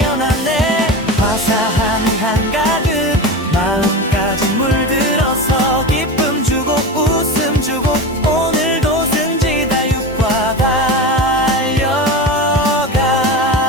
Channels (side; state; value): both; normal; correlation 0.25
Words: 화사함이 한가득 마음까지 물들어서 기쁨 주고 웃음 주고 오늘도 승지다육과 달려가는